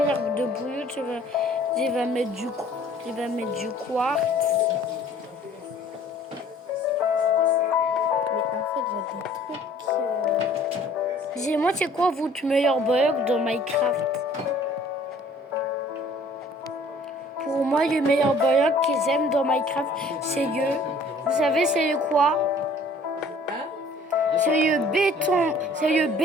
de bouillon, je vais mettre du quartz. Mais en fait, j'ai des trucs. Dis-moi, c'est quoi votre meilleur bug dans Minecraft? Pour moi, le meilleur bug qu'ils aiment dans Minecraft, c'est vous savez, c'est le quoi? C'est le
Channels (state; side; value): normal; both; correlation 0.54